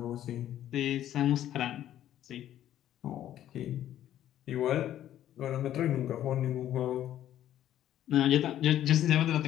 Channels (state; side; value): quieter; right; 11.9 dB